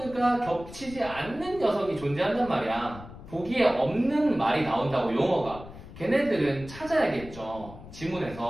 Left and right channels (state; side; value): noise; left; rumble, 15 dB below the sound